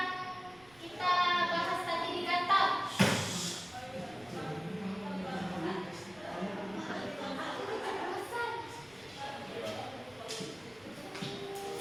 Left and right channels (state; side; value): noise; right; rumble, 26 dB below the sound